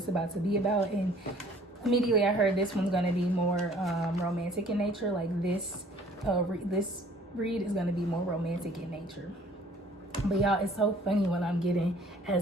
is about to be about, and immediately I heard this one's gonna be more romantic in nature. Like this read is gonna be more romantic in nature. But y'all, it's so funny when I'm getting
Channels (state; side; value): normal; both; correlation 0.55